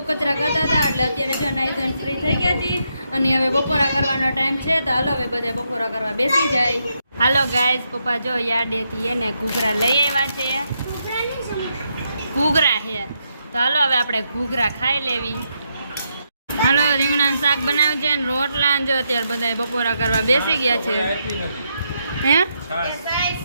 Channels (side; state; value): both; inverted; correlation -0.81